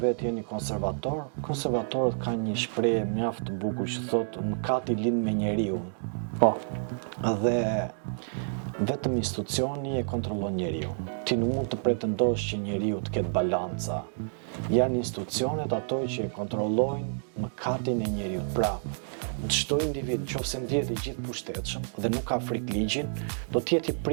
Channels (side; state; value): left; silent; digital silence